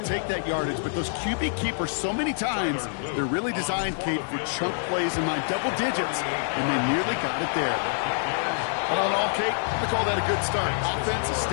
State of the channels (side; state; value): right; silent; digital silence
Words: take that yardage, but those QB keepers, so many times, they're really designed, Kate, for chunk plays in my double digits, and they nearly got it there. All in all, Kate, I call that a good start. Offense